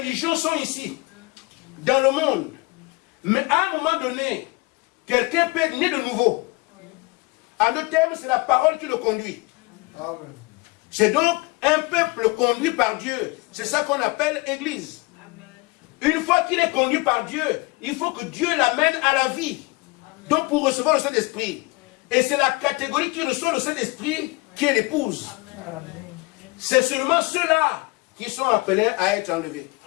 sont ici, dans le monde. Mais à un moment donné, quelqu'un peut être né de nouveau. En deux termes, c'est la parole qui le conduit. Amen. C'est donc un peuple conduit par Dieu. C'est ça qu'on appelle Église. Amen. Une fois qu'il est conduit par Dieu, il faut que Dieu l'amène à la vie. Amen. Donc pour recevoir le Saint-Esprit. Et c'est la catégorie qui reçoit le Saint-Esprit qui est l'épouse. C'est seulement ceux-là qui sont appelés à être enlevés.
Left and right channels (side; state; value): right; quieter; 25.5 dB